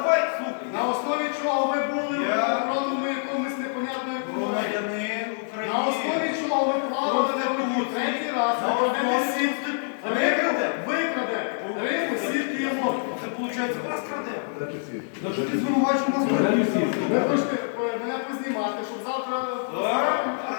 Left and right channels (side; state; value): right; silent; digital silence